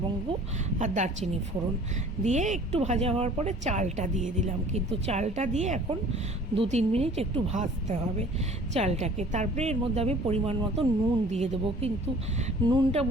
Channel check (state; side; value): normal; both; correlation 0.50